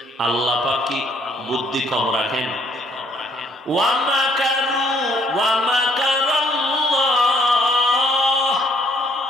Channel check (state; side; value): normal; both; correlation 0.65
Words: আল্লাহ পাক কি বুদ্ধি কম রাখেন?